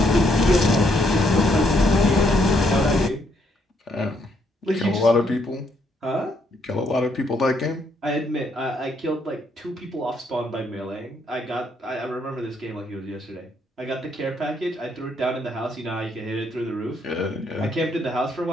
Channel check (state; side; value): normal; both; correlation 0.72